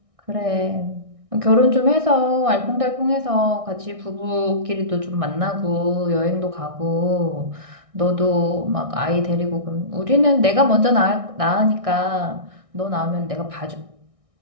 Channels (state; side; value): late; left; 1.6 ms